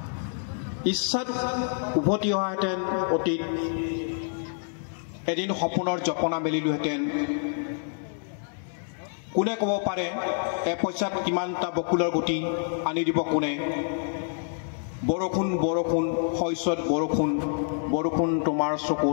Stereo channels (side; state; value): right; silent; digital silence